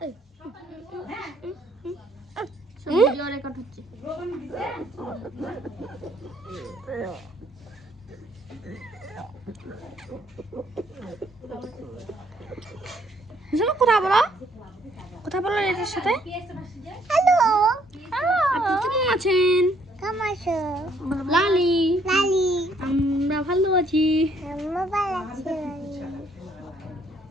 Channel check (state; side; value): normal; both; correlation 0.66